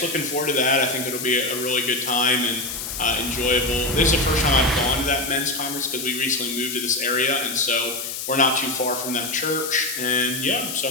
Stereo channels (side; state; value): left; noise; hiss, 6 dB below the sound